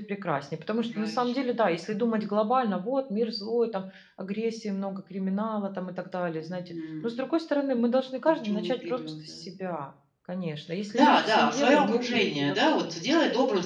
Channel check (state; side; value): identical; both; correlation 1.00